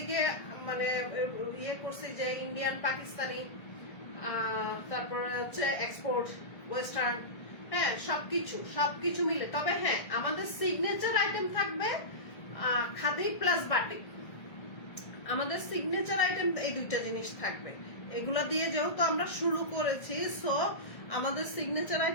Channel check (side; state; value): right; late; 1.6 ms